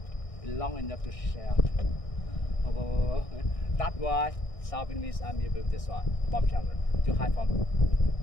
long enough to shell. That's why South Vietnamese Army built this one, bomb shelter, to hide from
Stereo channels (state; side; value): late; right; 1.6 ms